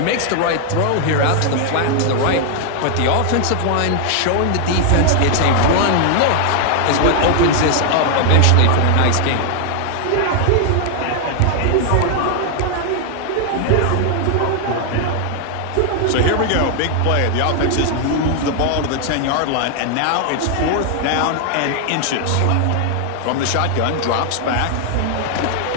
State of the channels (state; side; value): different; both; correlation 0.00